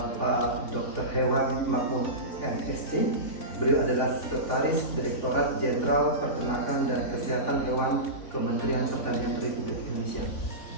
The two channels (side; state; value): right; late; 3.5 ms